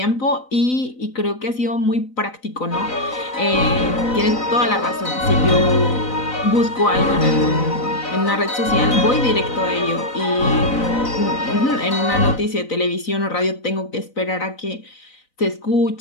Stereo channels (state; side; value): late; right; 4.0 ms